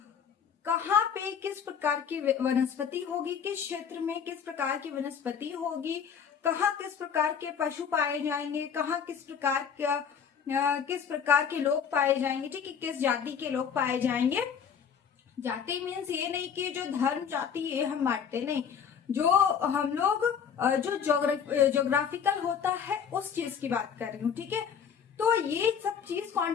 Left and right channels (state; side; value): quieter; right; 7.3 dB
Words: कहाँ पे किस प्रकार की वनस्पति होगी, किस क्षेत्र में किस प्रकार की वनस्पति होगी, कहाँ किस प्रकार के पशु पाए जाएंगे, कहाँ किस प्रकार के लोग पाए जाएंगे। ठीक है, किस जाति के लोग पाए जाएंगे। जाति मीन्स ये नहीं कि जो धर्म जाति ये हम बांटते नहीं, जो हम लोग जो ज्योग्राफिकल होता है उस चीज की बात कर रही हूँ। ठीक है, तो ये सब चीज कौन